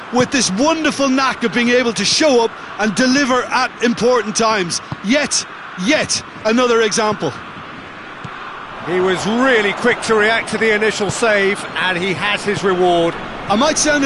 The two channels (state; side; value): identical; both; correlation 1.00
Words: with this wonderful knack of being able to show up and deliver at important times. Yet another example. He was really quick to react to the initial save, and he has his reward. I might sound